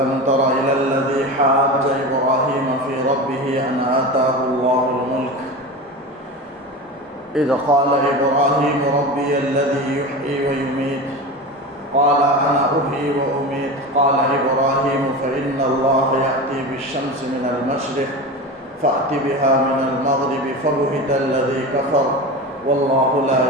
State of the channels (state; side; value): normal; both; correlation 0.27